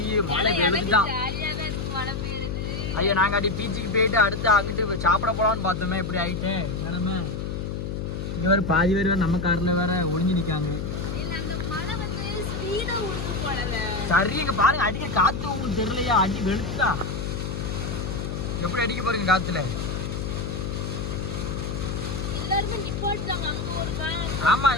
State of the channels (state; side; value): noise; left; hum, 4 dB below the sound